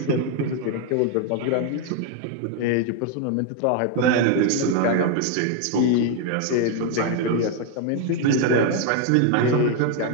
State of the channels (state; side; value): different; both; correlation 0.01